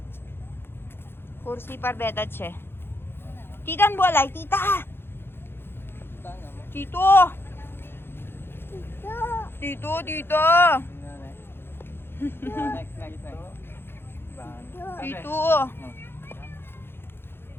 Kursi par beata, che. Titan bolay, tita. Tito. Tito. Tito.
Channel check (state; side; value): late; right; 0.11 ms